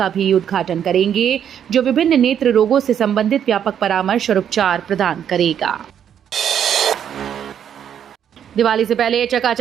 भी उद्घाटन करेंगे, जो विभिन्न नेत्र रोगों से संबंधित व्यापक परामर्श और उपचार प्रदान करेगा। दिवाली से पहले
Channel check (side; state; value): left; quieter; 9.0 dB